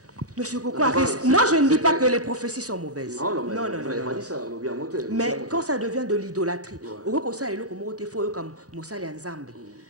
Monsieur Coco Harris, moi je ne dis pas que les prophéties sont mauvaises. Non. Mais quand ça devient de l'idolâtrie,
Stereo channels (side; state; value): both; normal; correlation -0.10